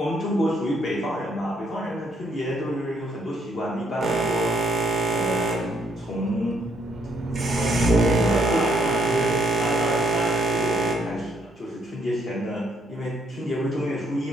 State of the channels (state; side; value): normal; both; correlation 0.70